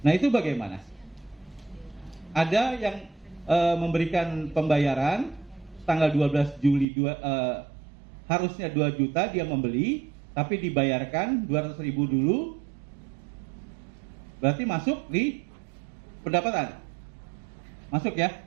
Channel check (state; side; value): drops out; left; at 6.9 s